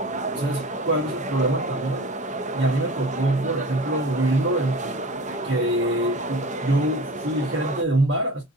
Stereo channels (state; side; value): normal; both; correlation 0.37